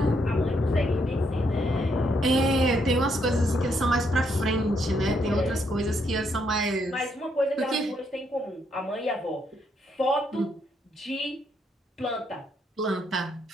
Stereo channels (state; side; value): normal; both; correlation 0.75